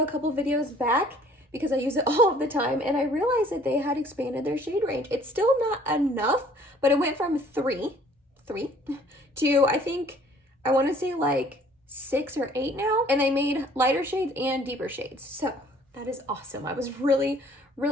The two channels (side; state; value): both; normal; correlation 0.56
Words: a couple videos back because I use it all of the time, and I realized that they had expanded their shade range. It's still not enough, but it went from three to, I think, I want to say like 6 or 8 now, and they made lighter shades and deeper shades. So that is awesome. I was really,